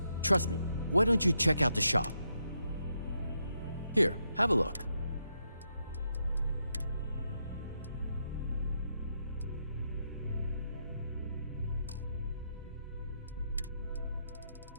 Trust me. Why don't you check out the shop? Here, have a look.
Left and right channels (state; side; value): inverted; both; correlation -0.81